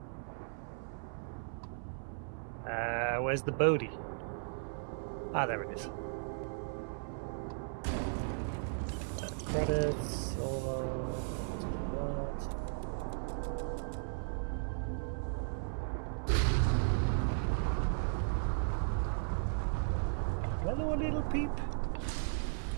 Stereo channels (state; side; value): silent; left; 54 dB below the other